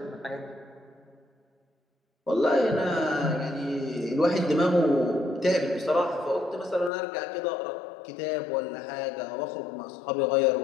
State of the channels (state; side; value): drops out; right; at 6.9 s